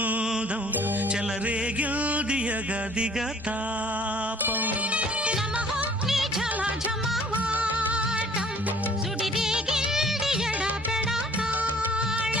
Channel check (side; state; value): both; normal; correlation 0.54